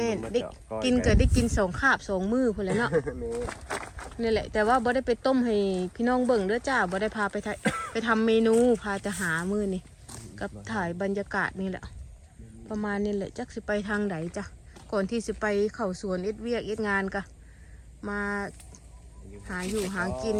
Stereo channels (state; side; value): identical; both; correlation 1.00